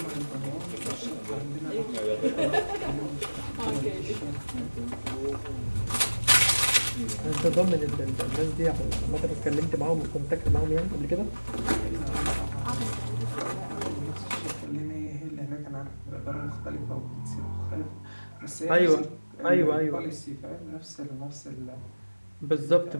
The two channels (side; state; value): both; inverted; correlation -1.00